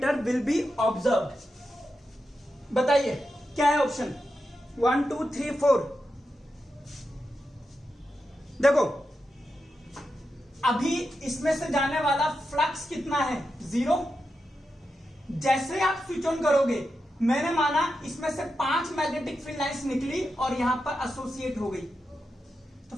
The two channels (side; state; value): both; normal; correlation 0.88